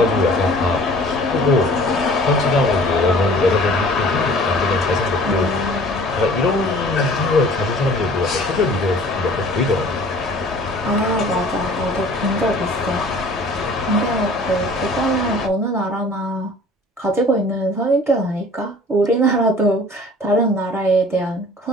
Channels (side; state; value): both; normal; correlation 0.49